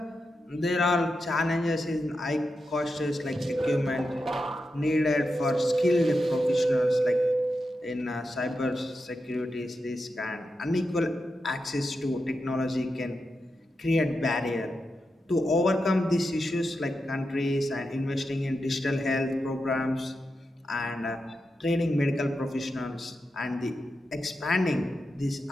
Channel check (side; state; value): both; normal; correlation 0.88